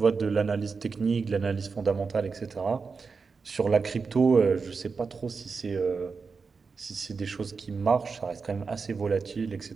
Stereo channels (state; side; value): quieter; left; 4.9 dB